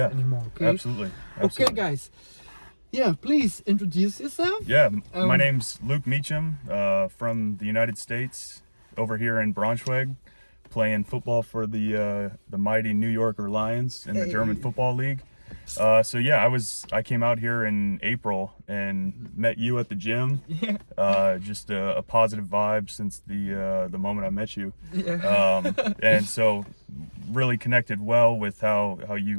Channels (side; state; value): both; inverted; correlation -1.00